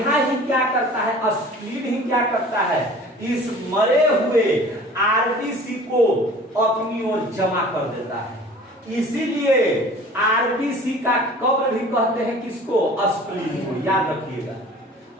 ही क्या करता है? स्प्लीन ही क्या करता है? इस मरे हुए आरबीसी को अपनी ओर जमा कर देता है। इसीलिए आरबीसी का कब्र भी कहते हैं किसको? स्प्लीन को। याद रखिएगा,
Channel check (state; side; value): normal; both; correlation 0.45